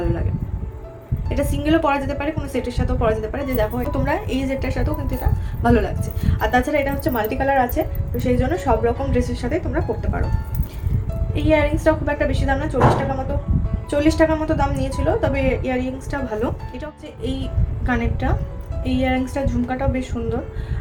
লাগে। এটা সিঙ্গেলও পরা যেতে পারে, কোনো সেটের সাথেও পরা যেতে পারে। যে দেখো তোমরা এই সেটটার সাথেও কিন্তু এটা ভালো লাগছে। আর তাছাড়া এটা হচ্ছে মাল্টি কালার আছে, তো সেই জন্য সব রকম ড্রেসের সাথে তোমরা পরতে পারো। এই ইয়াররিংসটাও খুব একটা বেশি দাম না, 40 টাকার মতো দাম নিয়েছিল, তবে ইয়াররিংসটা ভালো। এটা হচ্ছে এই কানেরটা, এই ইয়াররিংসটা ঝুমকাটাও বেশ সুন্দর,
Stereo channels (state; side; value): identical; both; correlation 1.00